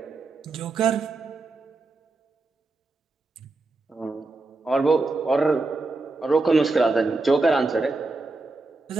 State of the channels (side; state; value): left; quieter; 3.4 dB